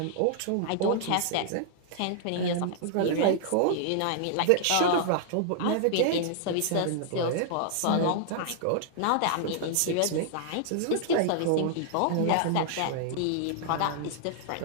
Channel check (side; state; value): both; different; correlation -0.01